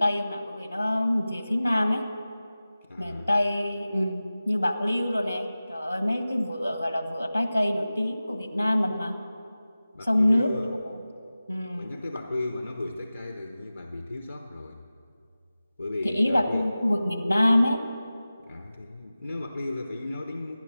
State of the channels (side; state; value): both; inverted; correlation -0.96